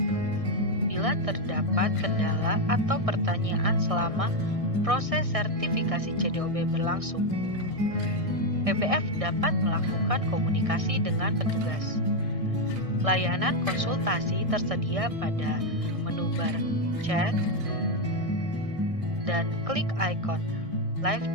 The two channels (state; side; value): late; left; 1.6 ms